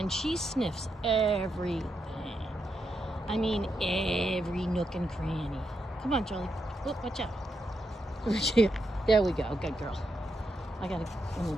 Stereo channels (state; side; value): normal; both; correlation 0.83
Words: she sniffs everything. I mean, every nook and cranny. Come on, Charlie. Oh, watch out. There we go. Good girl. Let me grab